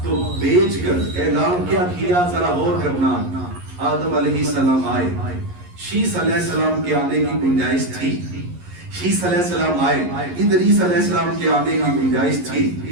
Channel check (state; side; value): late; left; 11 ms